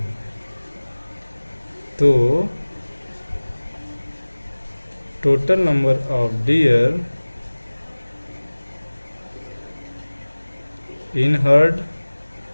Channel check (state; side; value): inverted; both; correlation -1.00